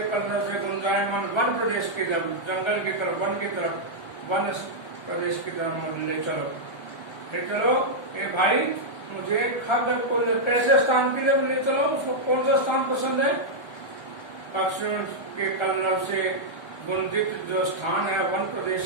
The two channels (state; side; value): late; right; 1.4 ms